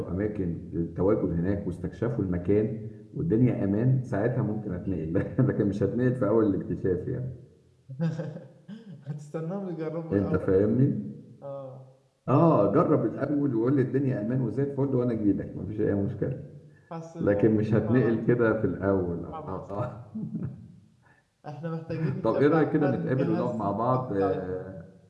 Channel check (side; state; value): both; identical; correlation 1.00